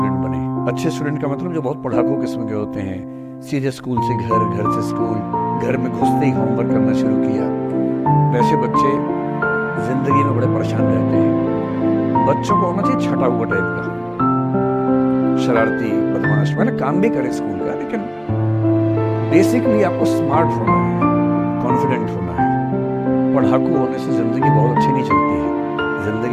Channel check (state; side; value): identical; both; correlation 1.00